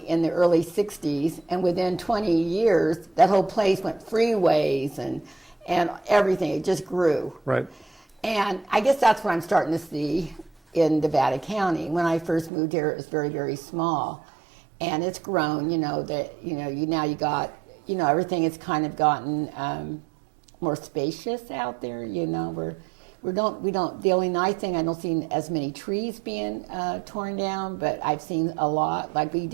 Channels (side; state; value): left; drops out; at 12.5 s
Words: in the early '60s, and within 20 years, that whole place went freeways and everything. It just grew. Right. And I guess that's what I'm starting to see in Nevada County. When I first moved here, it was very, very small, and it's grown. You know that now you got, you know, everything has kind of gotten more spacious out there. You know, we don't. The only nice thing, I don't see as many trees being torn down, but I've seen a lot. Like we